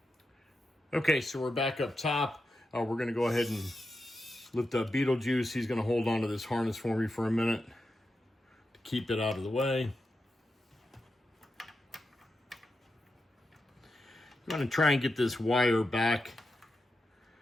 Okay, so we're back up top. We're going to go ahead and lift up Beetlejuice. He's going to hold on to this harness for me for a minute to keep it out of the way. I'm going to try and get this wire back.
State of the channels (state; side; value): normal; both; correlation 0.88